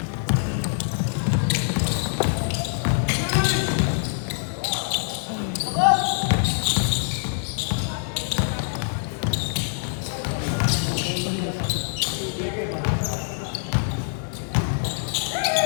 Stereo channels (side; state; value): right; silent; digital silence